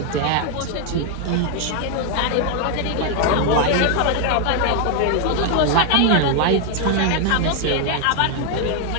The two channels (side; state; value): both; different; correlation 0.00